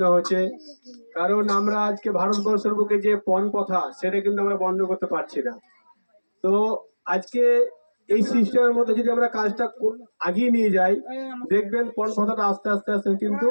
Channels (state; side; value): inverted; both; correlation -1.00